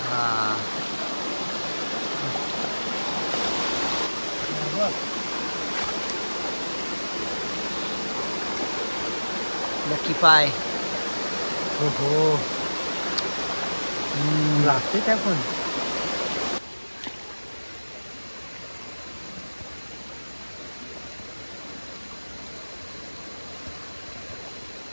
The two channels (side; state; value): both; inverted; correlation -1.00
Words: हा लकी पाय हो हो लागते काय पण